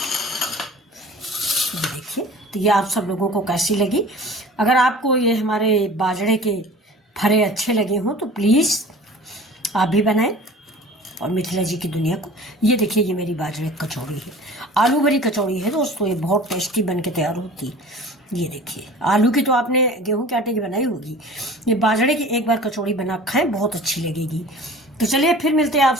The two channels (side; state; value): both; normal; correlation 0.42